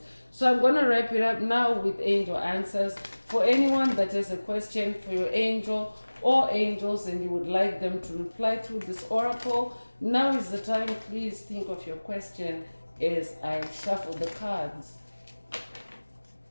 So I'm going to wrap it up now with angel answers. For anyone that has a question for your angel or angels and you would like them to reply through this oracle, now is the time. Please think of your question as I shuffle the cards.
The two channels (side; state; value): both; inverted; correlation -1.00